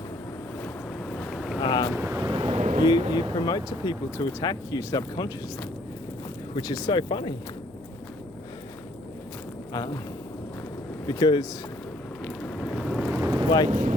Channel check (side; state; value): left; noise; hum, 24 dB below the sound